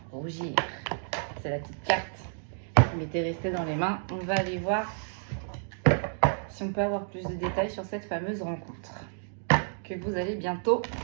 Rougir. C'est la petite carte qui m'était restée dans les mains. On va aller voir si on peut avoir plus de détails sur cette fameuse rencontre que vous allez bientôt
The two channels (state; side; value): silent; left; digital silence